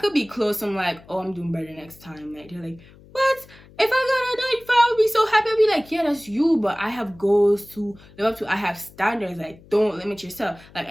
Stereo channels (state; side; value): noise; left; hum, 24 dB below the sound